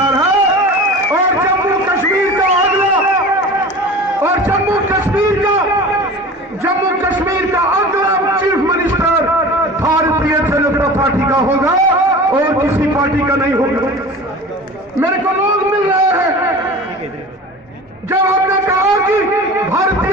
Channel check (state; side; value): normal; both; correlation 0.37